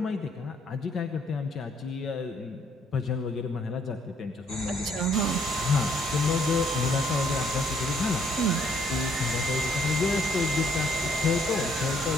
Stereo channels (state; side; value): normal; both; correlation 0.66